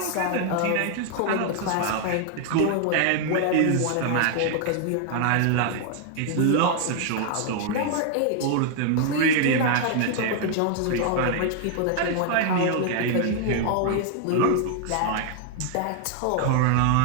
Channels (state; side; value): different; both; correlation 0.00